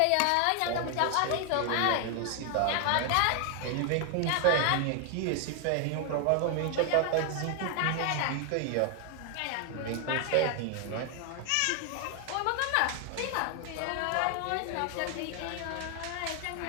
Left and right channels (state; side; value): different; both; correlation 0.00